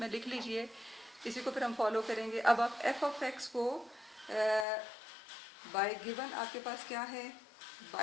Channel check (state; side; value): drops out; right; at 4.7 s